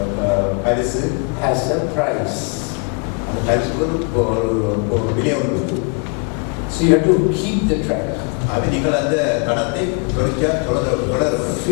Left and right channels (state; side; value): quieter; right; 35.1 dB